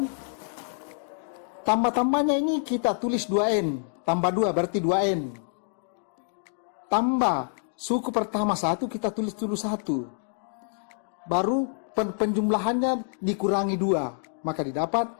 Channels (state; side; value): silent; right; digital silence